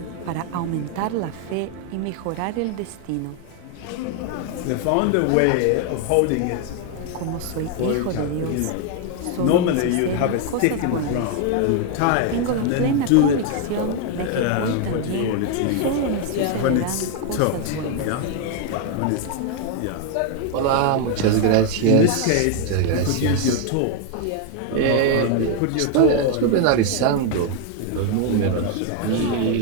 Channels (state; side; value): different; both; correlation 0.01